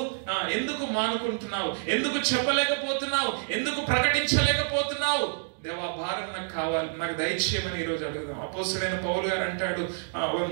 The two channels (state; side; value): silent; left; digital silence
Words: ఎందుకు మానుకుంటున్నావు? ఎందుకు చెప్పలేకపోతున్నావు? ఎందుకు ప్రకటించలేకపోతున్నావు? దేవా, భారం నాకు కావాలి, నాకు దయచేయమని ఈరోజు అడుగుదాం. అపోస్తలుడైన పౌలు గారు అంటాడు